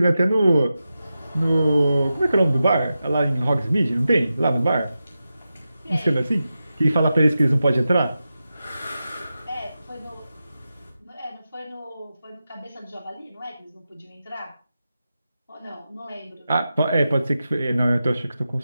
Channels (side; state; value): both; inverted; correlation -0.91